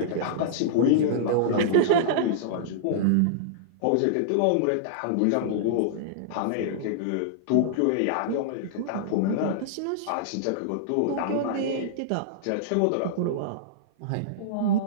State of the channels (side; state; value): both; different; correlation -0.02